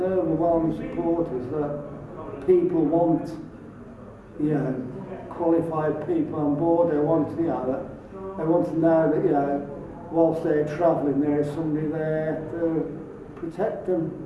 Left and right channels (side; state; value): both; identical; correlation 1.00